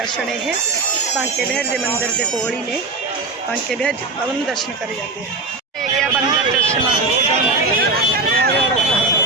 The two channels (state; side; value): quieter; left; 3.5 dB